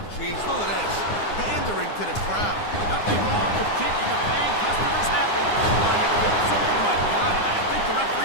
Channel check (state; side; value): late; right; 9.7 ms